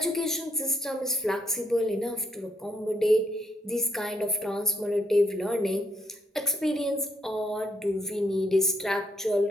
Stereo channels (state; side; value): normal; both; correlation 0.73